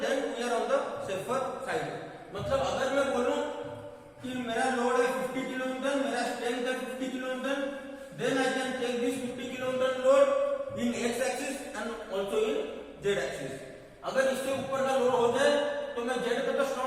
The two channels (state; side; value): identical; both; correlation 1.00